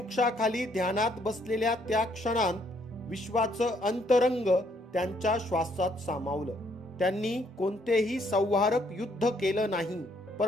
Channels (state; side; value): normal; both; correlation 0.69